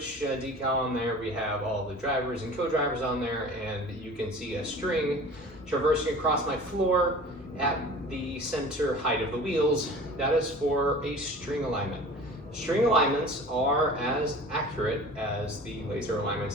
decal on there. We have all the drivers and co-drivers on there, and you can see a string traversing across my floor at the center height of the wheels. That is for a string alignment. String alignments are as accurate as the laser alignments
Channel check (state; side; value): normal; both; correlation 0.41